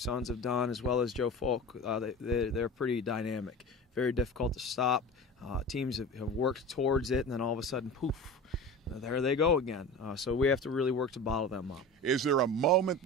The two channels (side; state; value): both; normal; correlation 0.33